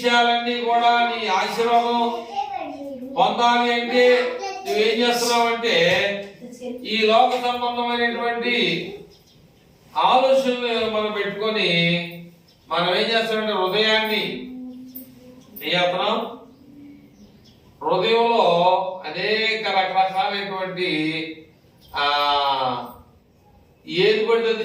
కూడా నీ ఆశీర్వాదం పొందాలి అంటే నువ్వేం చేస్తున్నావంటే ఈ లోక సంబంధమైనటువంటి ఆలోచనలు మనం పెట్టుకొని మనం ఏం చేస్తామంటే హృదయాన్ని ఏం చేస్తున్నాం? హృదయంలో అనేక రకరకాలైనటువంటి ఏది పడితే అది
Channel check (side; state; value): both; identical; correlation 1.00